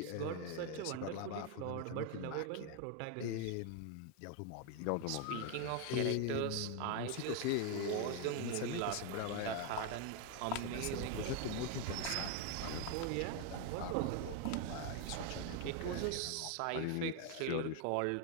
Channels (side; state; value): both; different; correlation 0.01